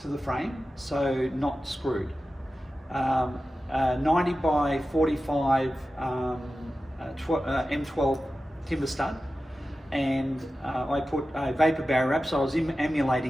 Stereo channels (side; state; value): both; normal; correlation 0.94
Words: to the frame, so not screwed. 90 by 45 M12 timber stud, and I put a vapor barrier wrap, so I was